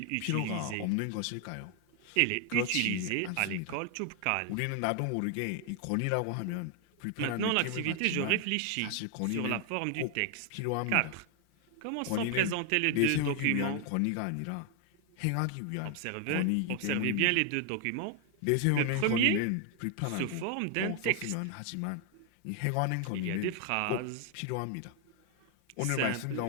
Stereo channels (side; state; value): both; different; correlation 0.00